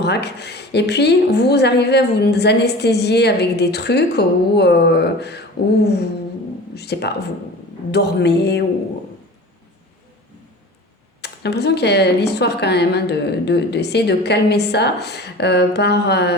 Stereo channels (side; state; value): both; normal; correlation 0.38